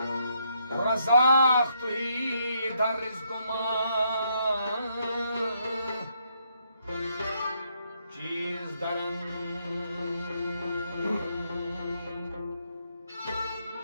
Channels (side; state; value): both; inverted; correlation -0.75